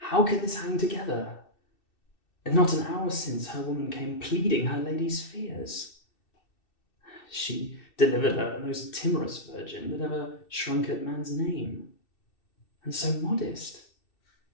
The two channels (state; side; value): late; right; 2.6 ms